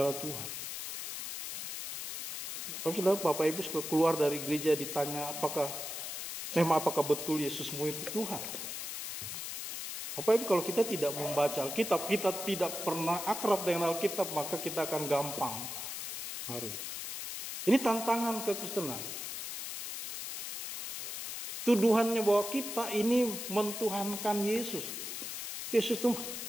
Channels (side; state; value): left; noise; hiss, 5 dB below the sound